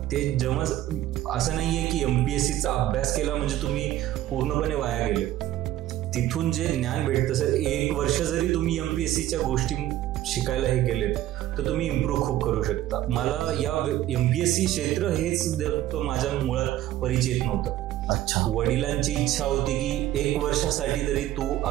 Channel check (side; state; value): left; quieter; 13.9 dB